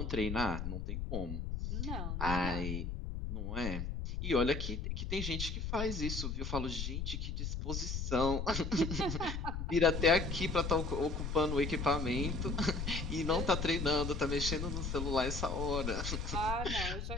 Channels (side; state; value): left; noise; rumble, 3 dB below the sound